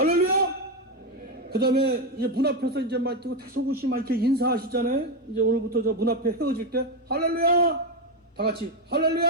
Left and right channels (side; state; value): both; normal; correlation 0.08